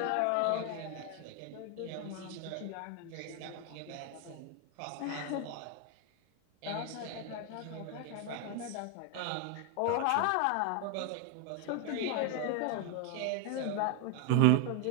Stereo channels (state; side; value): different; both; correlation 0.01